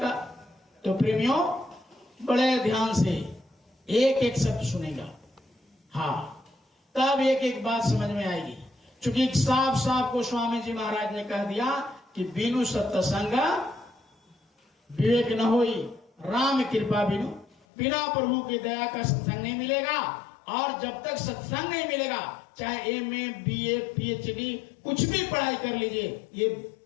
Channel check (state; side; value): drops out; right; at 17.6 s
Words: तो प्रेमियों, बड़े ध्यान से एक एक शब्द सुनेगा, हाँ, तब एक एक बात समझ में आएगी। क्योंकि साफ साफ को स्वामी जी महाराज ने कह दिया कि बिनु सत्संग विवेक न होई, राम कृपा बिनु, बिना प्रभु की दया का सत्संग नहीं मिलेगा। और जब तक सत्संग नहीं मिलेगा, चाहे एमए, बीए, पीएचडी, कुछ भी पढ़ाई कर लीजिए, ये